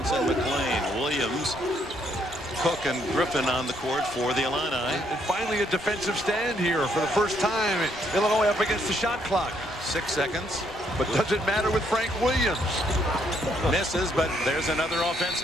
McLean, Williams, Cook, and Griffin on the court for the Illini. And finally a defensive stand here for the first time. Illinois up against the shot clock. 6 seconds. But does it matter with Frank Williams? Misses, but there's another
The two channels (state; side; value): normal; both; correlation 0.71